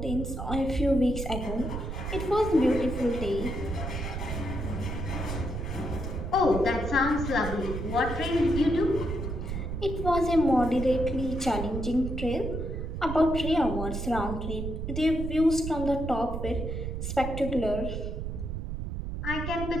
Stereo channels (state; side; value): noise; right; rumble, 4 dB below the sound